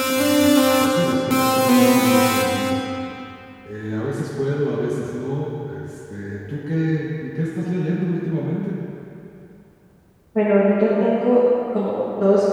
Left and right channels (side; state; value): both; identical; correlation 1.00